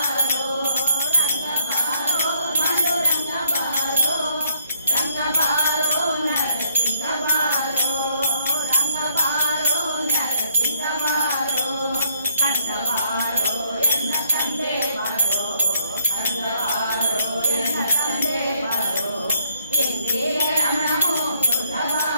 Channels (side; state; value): both; inverted; correlation -0.70